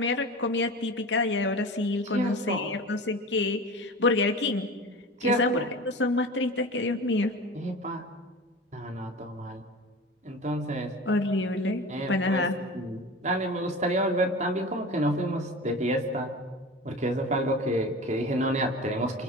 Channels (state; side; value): normal; both; correlation 0.34